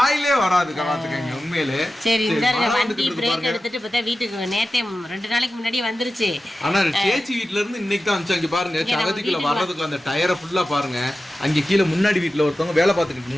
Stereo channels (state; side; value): normal; both; correlation 0.93